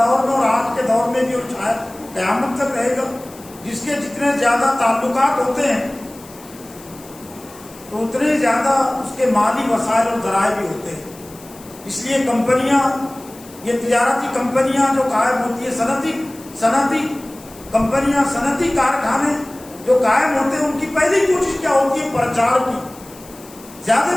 میں اور آج کے دور میں بھی اور شاید قیامت تک رہے گا، جس کے جتنے زیادہ تعلقات ہوتے ہیں تو اتنے زیادہ اس کے مالی وسائل اور ذرائع بھی ہوتے ہیں۔ اس لیے کمپنیاں یہ تجارتی کمپنیاں جو قائم ہوتی ہے، صنعتی کمپنیاں، صنعتی کارخانے جو قائم ہوتے ہیں، ان کی پہلی کوشش کیا ہوتی ہے؟ پرچار کی،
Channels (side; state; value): left; noise; hiss, 21 dB below the sound